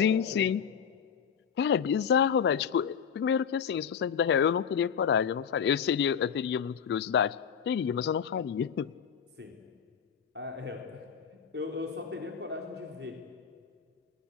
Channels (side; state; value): right; quieter; 7.4 dB